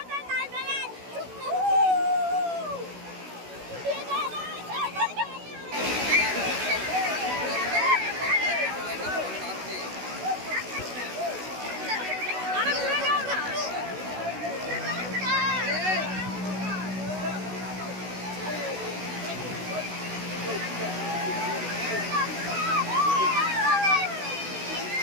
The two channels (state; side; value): late; left; 16 ms